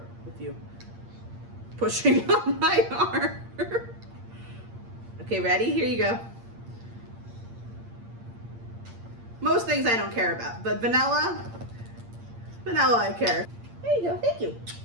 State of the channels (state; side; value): late; left; 8.7 ms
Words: with you pushing on my arm. Okay, ready? Here you go. Most things I don't care about, but vanilla I care. There you go. Thank you.